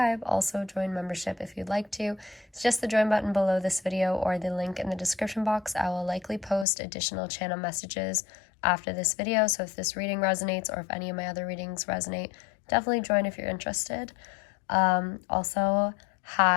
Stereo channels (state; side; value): drops out; right; at 6.7 s